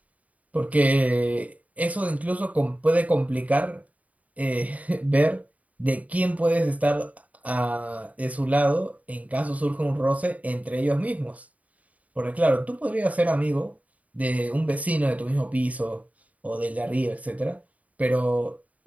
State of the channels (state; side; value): late; left; 0.071 ms